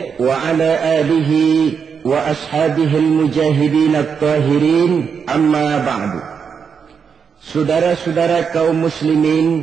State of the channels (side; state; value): left; quieter; 6.4 dB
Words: وعلى آله وأصحابه المجاهدين الطاهرين أما بعد. Saudara-saudara kaum